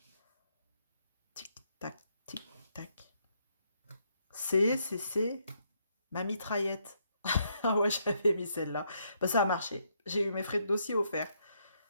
Tic tac, tic tac. C'est ma mitraillette. Ah ouais, j'avais mis celle-là. Bah ça a marché. J'ai eu mes frais de dossier offerts.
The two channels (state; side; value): inverted; both; correlation -0.75